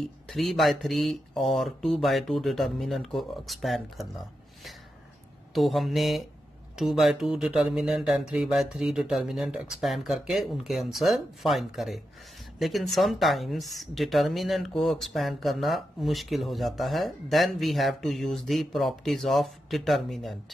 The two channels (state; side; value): normal; both; correlation 0.87